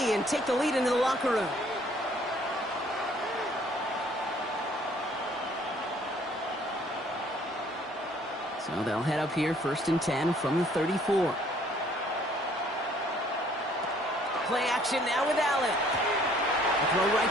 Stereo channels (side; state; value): both; normal; correlation 0.60